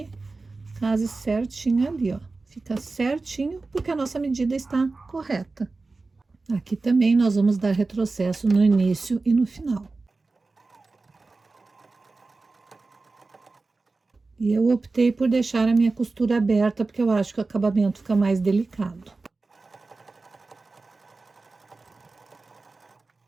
case certinho ali, ó. Fica certinho, porque a nossa medida está correta. Aqui também nós vamos dar retrocesso no início e no final. E eu optei por deixar a minha costura aberta, porque eu acho que o acabamento fica mais delicado.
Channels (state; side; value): quieter; left; 3.7 dB